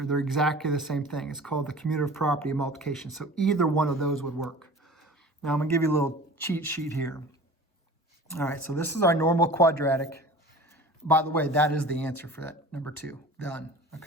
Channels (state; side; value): normal; both; correlation 0.41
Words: They're exactly the same thing. It's called the commutative property of multiplication. So either one of those would work. Now I'm going to give you a little cheat sheet here. All right, so this is our normal quadratic. By the way, that is the answer for that, number 2. Done,